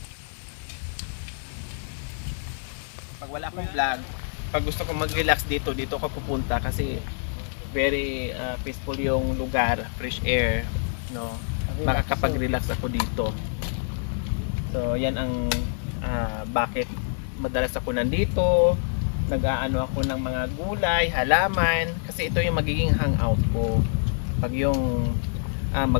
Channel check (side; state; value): right; silent; digital silence